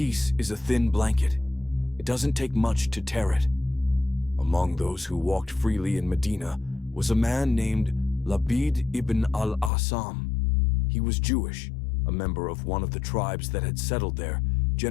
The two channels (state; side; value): drops out; right; at 9.7 s